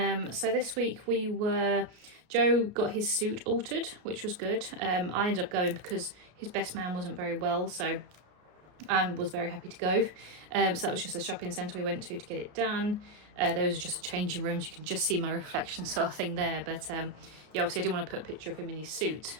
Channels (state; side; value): late; left; 33 ms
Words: this week Joe got his suit altered, which was good. I ended up going because his best man wasn't very well, so I was very happy to go. So that was just a shopping centre we went to get it done. Those are just changing rooms. You can just see my reflection sort of thing there. But yeah, obviously I didn't want to put a picture of him in his suit